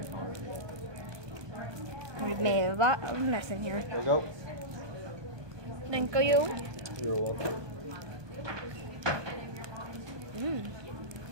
orange. We've made a lot of mess in here. There we go. Thank you. You're welcome.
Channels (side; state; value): left; late; 1.2 ms